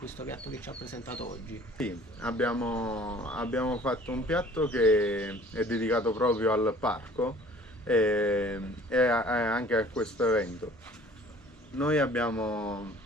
piatto che ci ha presentato oggi. Sì, abbiamo fatto un piatto che è dedicato proprio al parco e anche a questo evento. Noi abbiamo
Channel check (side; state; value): both; normal; correlation 0.51